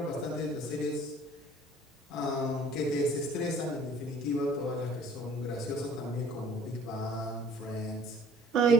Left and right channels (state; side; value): normal; both; correlation 0.53